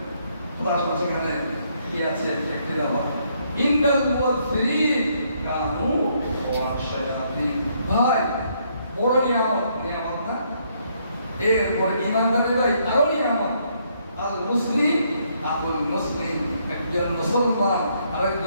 তার সেখানে কি আছে দেখতে দেওয়া। ইন্নাল মুবাযযিরিন কানু ইখওয়ানাশ শায়াতিন। ভাই বড় নিয়ামত না? এরপরে ইমানদারের ভাই আরো নিয়ামত। আল মুসলিম আকুল মুসলিম, একজন মুসলমান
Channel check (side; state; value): both; inverted; correlation -0.71